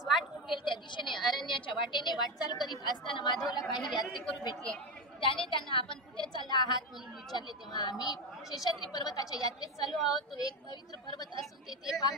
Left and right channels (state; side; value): normal; both; correlation 0.15